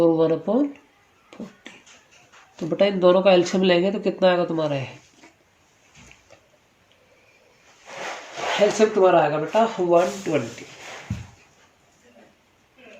1/40। तो बेटा इन दोनों का एलसीएम लेंगे तो कितना आएगा तुम्हारा है, एलसीएम तुम्हारा आएगा बेटा 120।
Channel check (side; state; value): both; identical; correlation 1.00